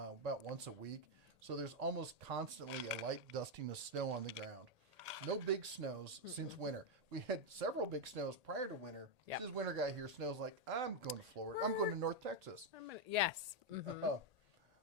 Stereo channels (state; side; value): late; left; 1.8 ms